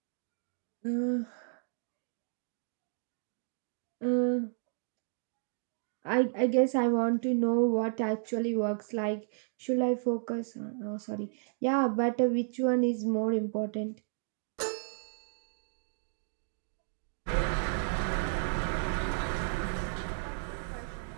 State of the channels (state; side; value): silent; left; digital silence